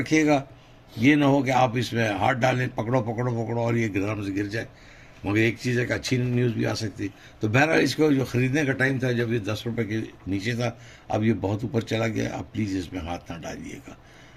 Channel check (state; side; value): identical; both; correlation 1.00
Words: ये ना हो कि आप इसमें हाथ डालें, पकड़ो पकड़ो पकड़ो और ये ग्राम से गिर जाए। मगर एक चीज़ है कि अच्छी न्यूज़ भी आ सकती। तो बहरहाल, इसको जो ख़रीदने का टाइम था जब ये 10 रुपये के नीचे था, अब ये बहुत ऊपर चला गया। आप प्लीज़ इसमें हाथ ना डालिएगा,